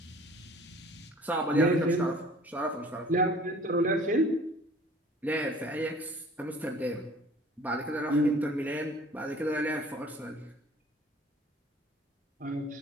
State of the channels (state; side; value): normal; both; correlation 0.50